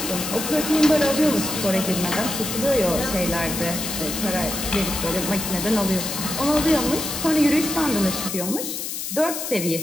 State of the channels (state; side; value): noise; left; hiss, 5 dB below the sound